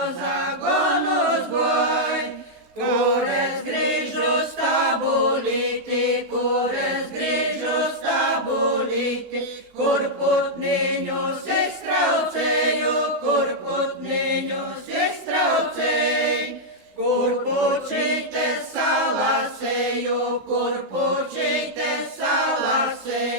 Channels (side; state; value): left; late; 16 ms